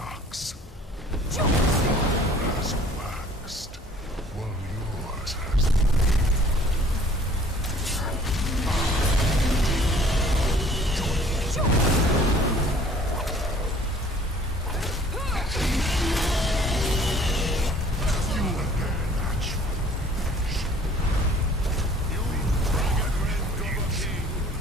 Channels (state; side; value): normal; both; correlation 0.53